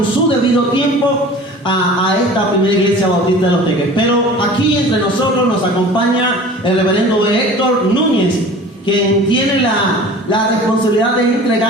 su debido tiempo a esta primera iglesia bautista de Los Teques. Pero aquí entre nosotros nos acompaña el reverendo Héctor Núñez, quien tiene la responsabilidad de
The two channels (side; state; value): both; normal; correlation 0.42